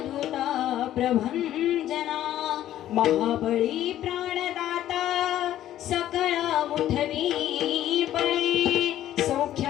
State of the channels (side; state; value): right; quieter; 12.5 dB